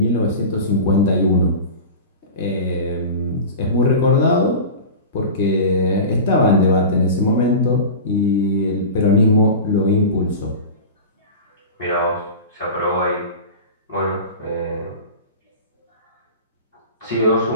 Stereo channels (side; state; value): both; inverted; correlation -0.31